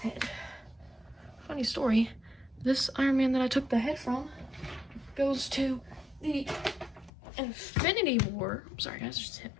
Funny story, this Iron Man that I took the head from goes to the Infinity War, I'm sorry guys, just hit my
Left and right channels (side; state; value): right; drops out; at 7.1 s